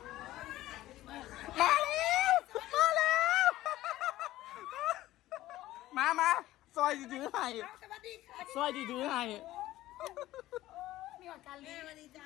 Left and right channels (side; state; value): right; quieter; 15.6 dB